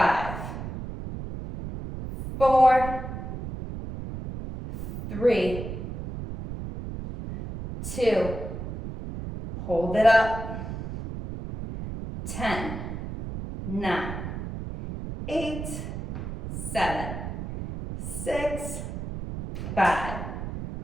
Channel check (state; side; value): noise; right; rumble, 7 dB below the sound